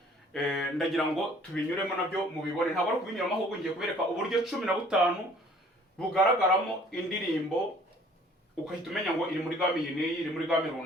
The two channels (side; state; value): both; normal; correlation 0.55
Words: ndagira ngo tubinyuremo nabyo mubibone. Ntabwo ari kubinyuramo, ahubwo ngiye kubereka uburyo 15 bugaragaramo indirimbo, ukahita umenya ngo iri muri game iyi n'iyi, iri muri game